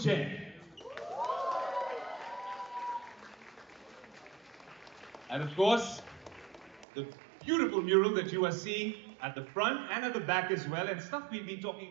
And of course, the beautiful mural that you are seeing at the front and at the back as well, and stuff we've been talking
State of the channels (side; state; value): left; drops out; at 6.9 s